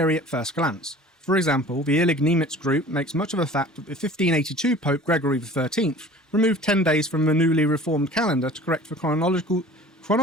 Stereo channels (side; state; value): both; normal; correlation 0.44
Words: at first glance. For example, the Illig-Niemitz group makes much of the fact that the 1582 Pope Gregory XIII removed 10 days from the newly reformed calendar to correct the